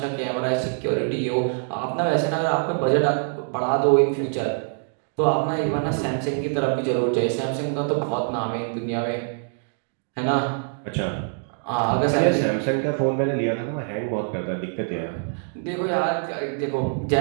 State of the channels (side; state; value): left; silent; 56 dB below the other